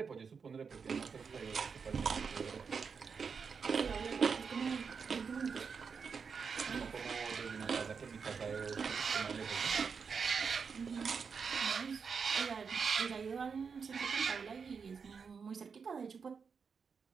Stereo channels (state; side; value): quieter; left; 5.8 dB